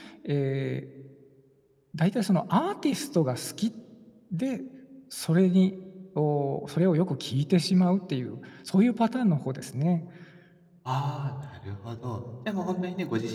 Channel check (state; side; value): identical; both; correlation 1.00